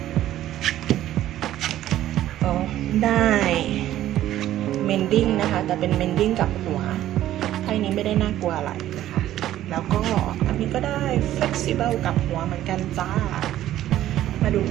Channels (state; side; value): quieter; left; 13.1 dB